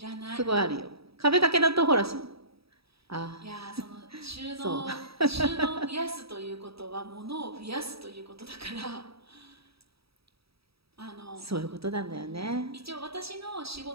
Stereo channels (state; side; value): late; left; 0.77 ms